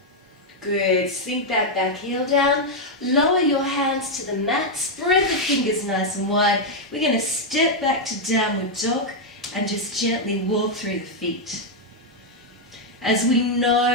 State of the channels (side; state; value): both; normal; correlation -0.01